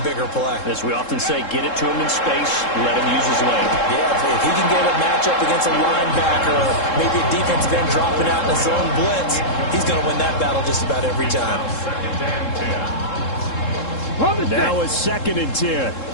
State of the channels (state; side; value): late; right; 3.7 ms